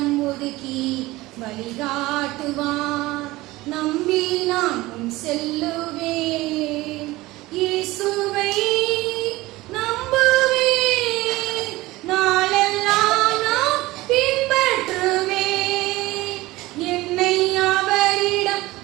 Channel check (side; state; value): left; quieter; 19.2 dB